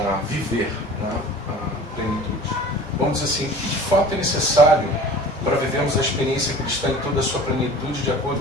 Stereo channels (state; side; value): normal; both; correlation 0.42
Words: viver, né, a plenitude. Vamos dizer assim, o que de fato é necessário para vivermos a experiência cristã em toda a sua plenitude, de